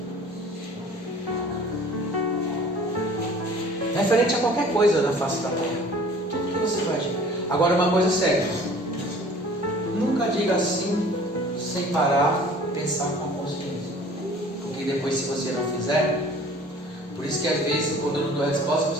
Referente a qualquer coisa da face da terra. Tudo que você faz. Agora uma coisa séria. Nunca diga assim sem parar, pensar com a consciência. Porque depois, se você não fizer, por isso que às vezes quando eu não dou resposta,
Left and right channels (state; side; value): normal; both; correlation 0.48